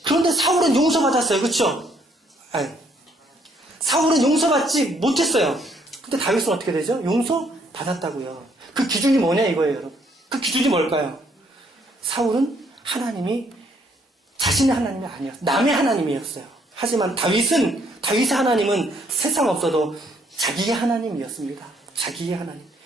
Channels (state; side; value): normal; both; correlation 0.68